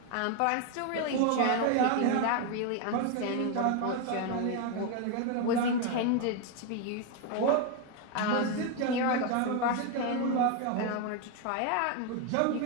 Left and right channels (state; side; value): different; both; correlation 0.01